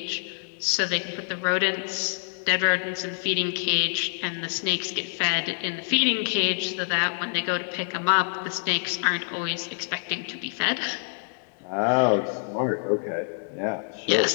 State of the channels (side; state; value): right; silent; 61 dB below the other